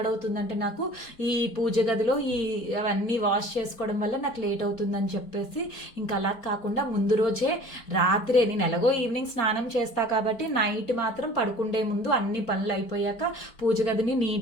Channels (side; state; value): right; late; 4.4 ms